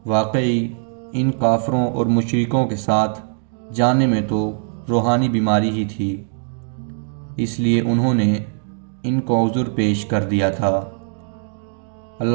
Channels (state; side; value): silent; left; digital silence